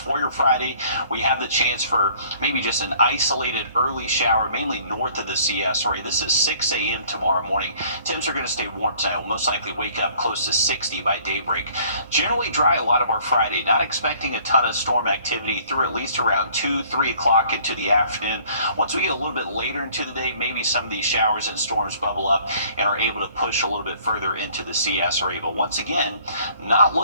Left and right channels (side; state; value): both; inverted; correlation -0.57